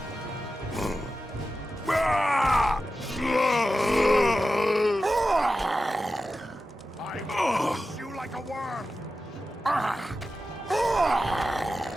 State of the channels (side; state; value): both; normal; correlation 0.93